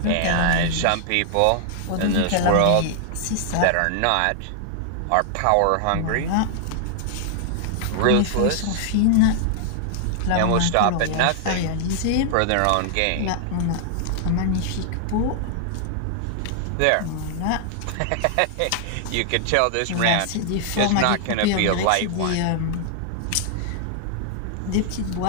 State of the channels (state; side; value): different; both; correlation -0.01